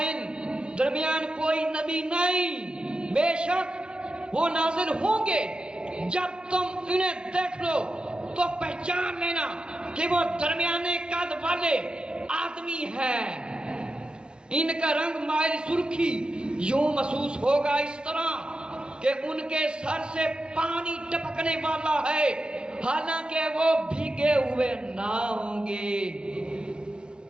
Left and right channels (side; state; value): left; late; 0.051 ms